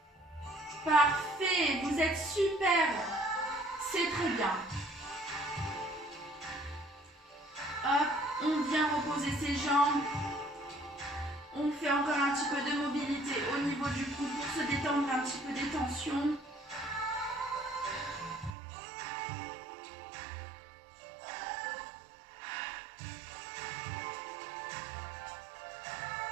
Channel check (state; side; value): drops out; left; at 18.5 s